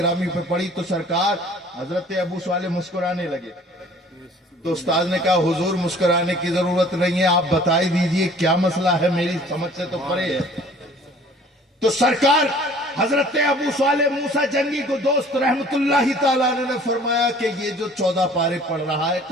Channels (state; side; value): normal; both; correlation 0.52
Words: پہ پڑی تو سرکار حضرت ابو صالح مسکرانے لگے. تو استاذ نے کہا حضور مسکرانے کی ضرورت نہیں ہے، آپ بتائی دیجئے کیا مسئلہ ہے، میری سمجھ سے تو پرے ہے. تو سرکار حضرت ابو صالح موسیٰ جنگی کو دوست رحمت اللہ تعالیٰ نے فرمایا کہ یہ جو 14 پارے پڑھ رہا ہے